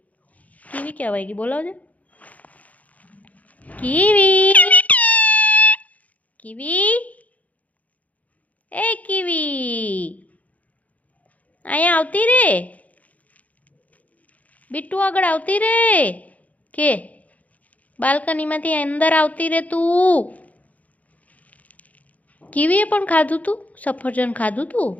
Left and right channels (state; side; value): late; right; 0.073 ms